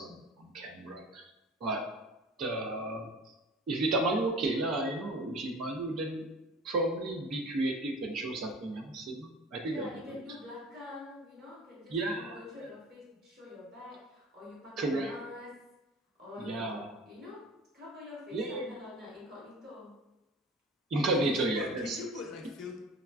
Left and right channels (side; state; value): both; normal; correlation 0.41